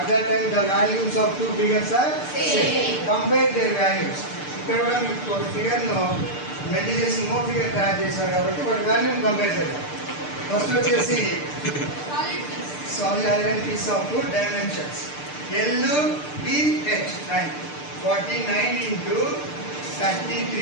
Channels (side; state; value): right; late; 6.7 ms